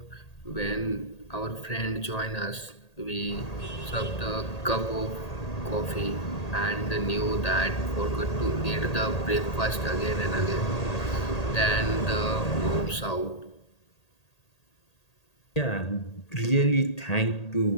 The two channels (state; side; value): late; right; 1.8 ms